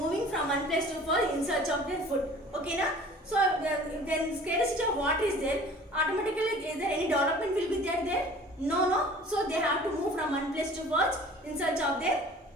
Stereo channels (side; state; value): both; normal; correlation 0.47